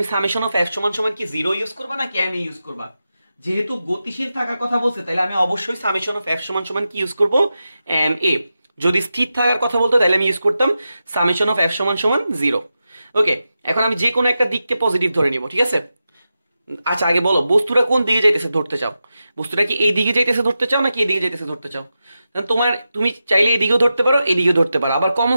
সামেশন অফ এফ সমান সমান কি 0 ইউজ করবা নাকি এম ইউজ করবা? যেহেতু গতিশীল থাকার কথা বলছে, তাহলে আমি অবশ্যই সামেশন অফ এফ সমান সমান কি ইউজ করবো? M A. যদি স্থির থাকার কথা বলতো, তাহলে আমি ইউজ করতাম সামেশন অফ এফ সমান সমান 0। ওকে, এখন আমি যে কোনো একটা দিককে পজিটিভ ধরে নিব, ঠিক আছে? আচ্ছা, আগে বলো বস্তুটা কোন দিকে যাইতেছে ধরতে চাও? বস্তুটা কি এই দিকে যাইতেছে ধরতে চাও নাকি এদিকে যাইতেছে ধরতে চাও? তুমি চাইলে এদিকেও ধরতে পারো, এদিকেও ধরতে পারো, আবার কমন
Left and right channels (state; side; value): inverted; both; correlation -0.91